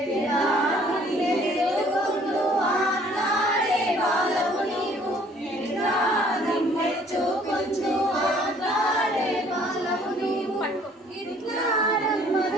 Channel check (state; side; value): normal; both; correlation 0.58